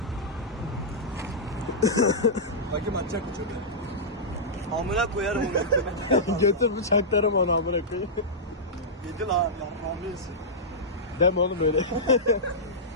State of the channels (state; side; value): normal; both; correlation -0.13